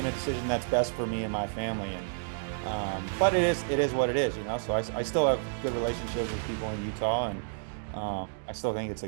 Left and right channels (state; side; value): silent; left; digital silence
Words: a decision that's best for me and my family. And but it is what it is, So I still have good relationships with people in Utah, and I still think